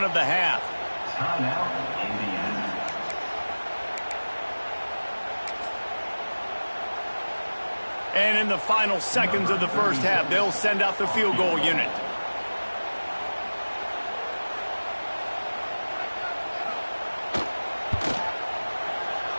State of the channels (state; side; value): inverted; both; correlation -1.00